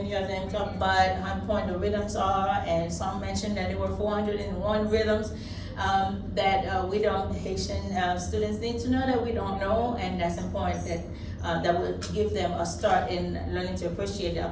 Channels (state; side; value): identical; both; correlation 1.00